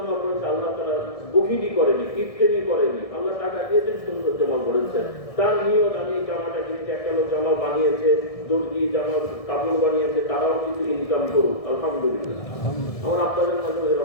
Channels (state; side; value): late; right; 1.6 ms